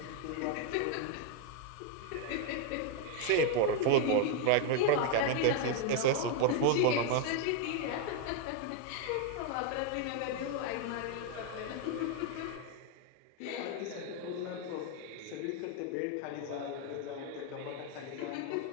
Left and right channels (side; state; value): both; different; correlation 0.01